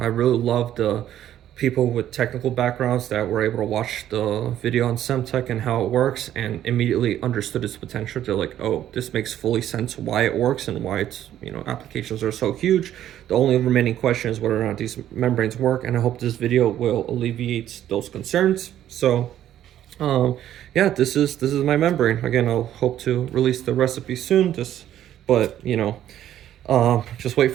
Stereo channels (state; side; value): quieter; left; 11.6 dB